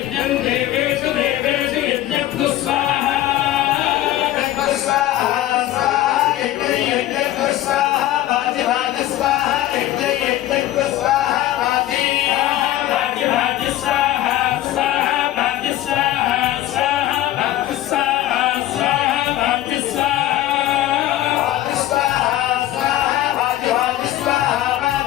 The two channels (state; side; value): quieter; right; 14.0 dB